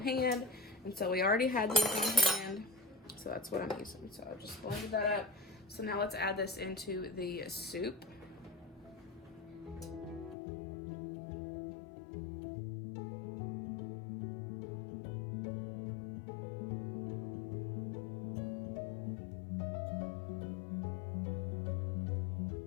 hand. And so we already had these on hand. So that's what I'm using. So I just blended that up. So now let's add this into the soup.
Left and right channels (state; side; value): drops out; right; at 10.4 s